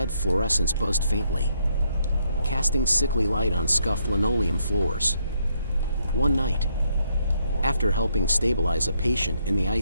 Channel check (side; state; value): both; inverted; correlation -0.74